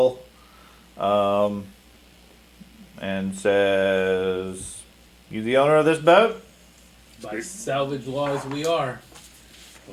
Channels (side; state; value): both; identical; correlation 1.00